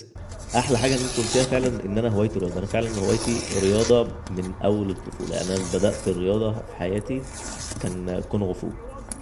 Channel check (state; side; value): identical; both; correlation 1.00